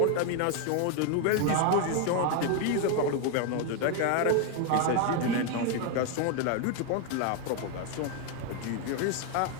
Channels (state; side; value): different; both; correlation 0.01